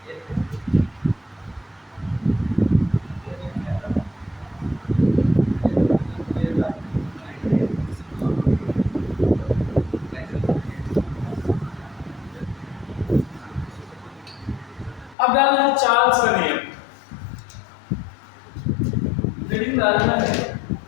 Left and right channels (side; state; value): right; drops out; at 15.2 s